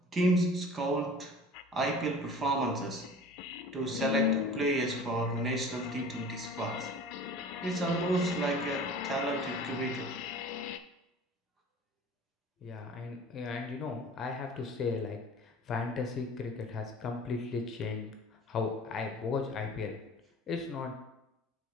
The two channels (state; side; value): normal; both; correlation 0.43